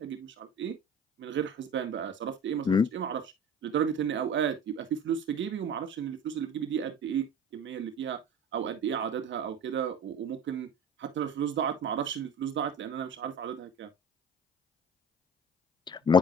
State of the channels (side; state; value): both; normal; correlation 0.38